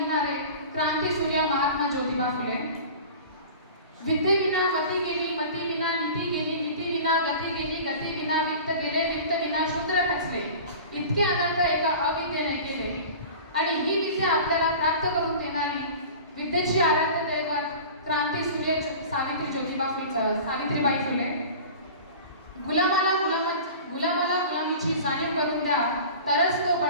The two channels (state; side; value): inverted; both; correlation -0.38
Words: क्रांतीसूर्य महात्मा ज्योतिबा फुले. विद्येविना मती गेली, मती विना नीती गेली, नीती विना गती गेली, गती विना वित्त गेले, वित्त विना शूद्र खचले. इतके अनंत एका अविद्येने केले आणि ही विद्या आपल्याला प्राप्त करून देणारी विद्येची आराध्य दैवत क्रांतीसूर्य सावित्रीबाई फुले. गुलामाला गुलामीची जाणीव करून द्या, तरच तो